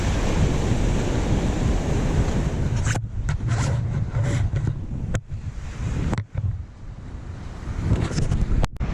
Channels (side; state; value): both; identical; correlation 1.00